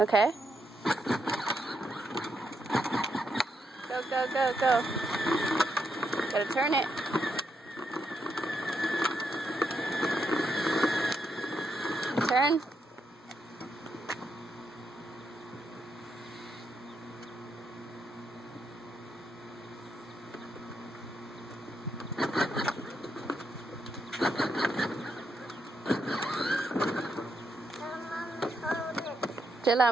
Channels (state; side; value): normal; both; correlation 0.80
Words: Go. Gotta turn it. Turn. Jilla,